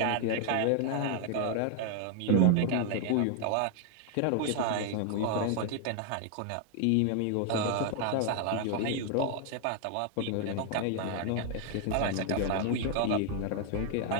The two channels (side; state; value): both; different; correlation 0.00